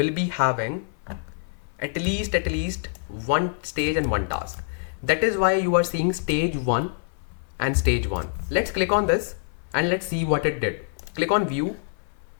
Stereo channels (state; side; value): silent; right; 56 dB below the other